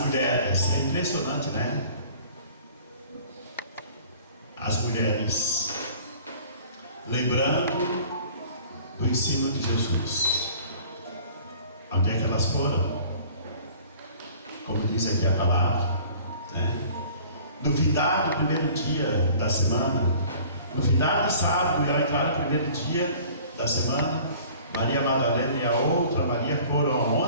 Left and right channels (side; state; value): both; inverted; correlation -0.49